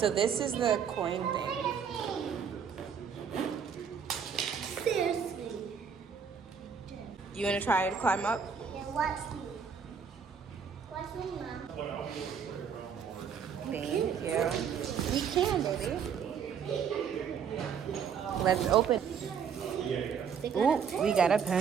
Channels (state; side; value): quieter; left; 7.0 dB